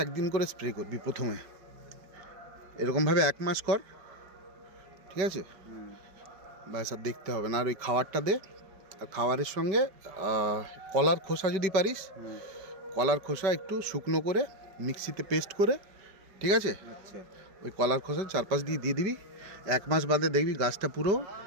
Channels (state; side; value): late; left; 5.1 ms